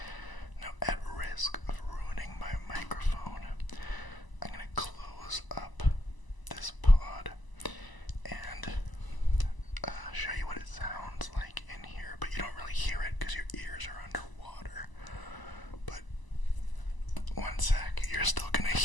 Now, at risk of ruining my microphone, I'm going to close up this pod and show you what it sounds like in here, but you don't really hear it because your ears are underwater. But one sec, you're still gonna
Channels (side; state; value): right; late; 1.0 ms